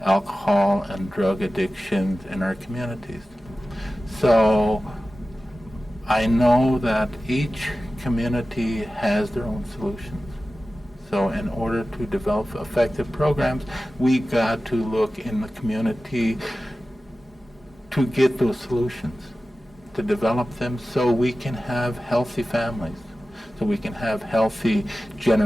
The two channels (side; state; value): both; normal; correlation 0.95